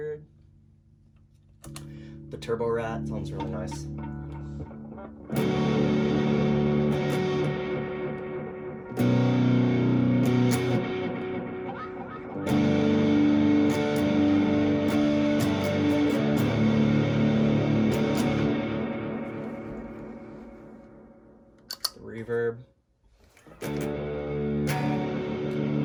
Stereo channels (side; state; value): both; identical; correlation 1.00